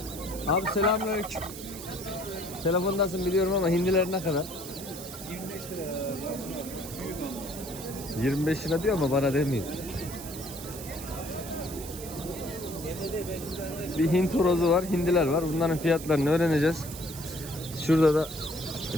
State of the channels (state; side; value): noise; right; hiss, 12 dB below the sound